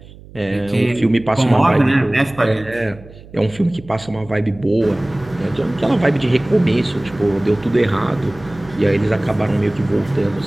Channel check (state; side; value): noise; right; hum, 20 dB below the sound